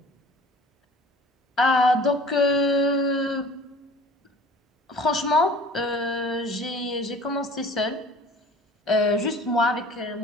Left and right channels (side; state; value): both; normal; correlation 0.46